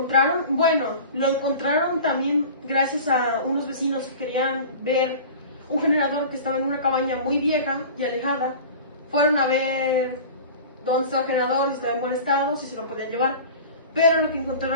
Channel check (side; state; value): both; inverted; correlation -0.38